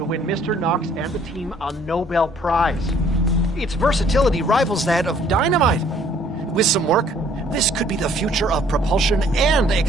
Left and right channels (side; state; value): both; normal; correlation 0.60